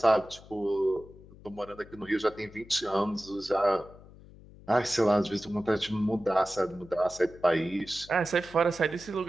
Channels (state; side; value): noise; left; hum, 21 dB below the sound